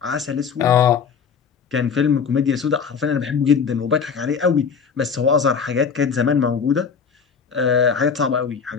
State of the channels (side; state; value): right; quieter; 6.3 dB